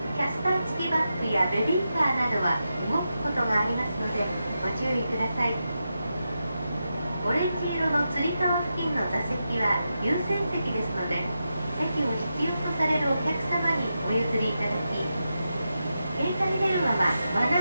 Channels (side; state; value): both; inverted; correlation -0.88